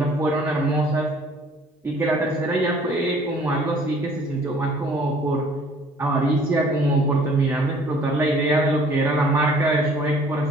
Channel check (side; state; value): both; normal; correlation 0.55